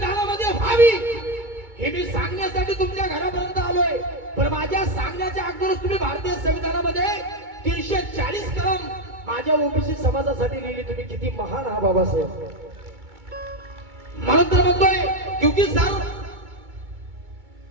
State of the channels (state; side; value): late; left; 2.3 ms